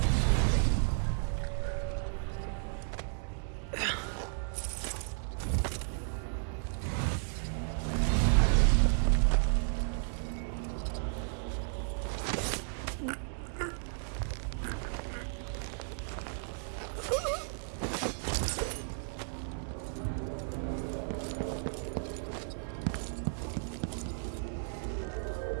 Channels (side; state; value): left; silent; digital silence